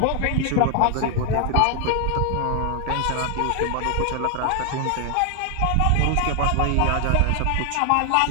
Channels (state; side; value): different; both; correlation 0.00